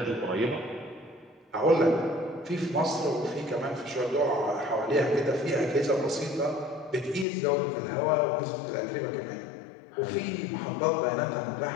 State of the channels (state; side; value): drops out; right; at 7.2 s